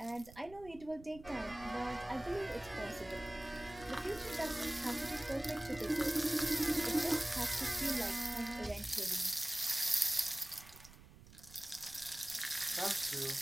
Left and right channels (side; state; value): right; noise; rumble, 19 dB below the sound